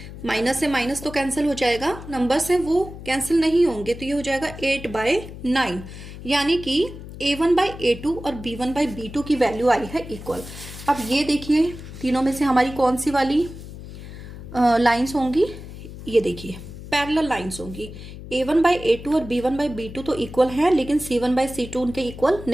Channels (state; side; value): noise; left; hum, 13 dB below the sound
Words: माइनस से माइनस तो कैंसिल हो जाएगा, नंबर्स हैं वो कैंसिल नहीं होंगे, तो ये हो जाएगा 8/9, यानी कि a1 बाय a2 और b1 बाय b2 की वैल्यू आई है इक्वल। अब ये देखिए तीनों में से हमारी कौन सी वाली लाइंस होंगी, ये देखिए पैरेलल लाइंस होंगी। a1 बाय a2 और b1 बाय b2 तो इक्वल है, लेकिन c1 बाय c2 उनके इक्वल